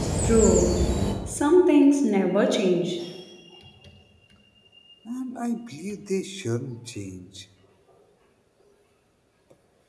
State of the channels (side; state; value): both; identical; correlation 1.00